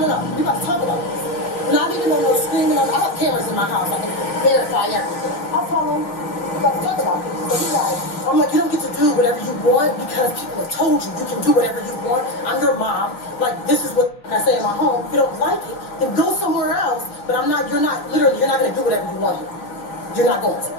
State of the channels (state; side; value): late; right; 5.8 ms